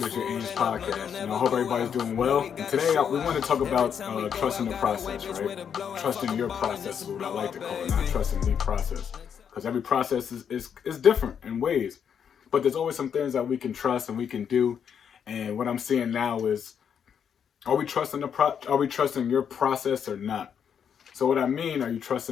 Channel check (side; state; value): right; quieter; 7.8 dB